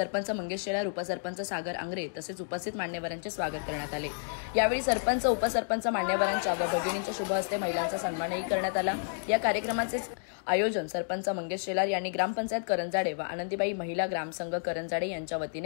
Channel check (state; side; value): silent; right; digital silence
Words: मंगेश शेलार, उपसरपंच सागर आंग्रे तसेच उपस्थित मान्यवरांचे स्वागत करण्यात आले। यावेळी सरपंच, उपसरपंच, मान्यवरांच्या व भगिनींच्या शुभ हस्ते महिलांचा सन्मानही करण्यात आला। या कार्यक्रमाचे आयोजन सरपंच मंगेश शेलार यांनी ग्रामपंचायत करंजाडे व आनंदीबाई महिला ग्रामसंघ करंजाडे यांच्या